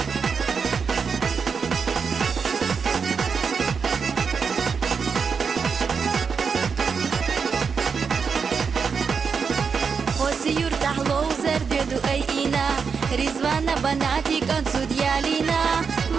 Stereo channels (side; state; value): left; quieter; 5.8 dB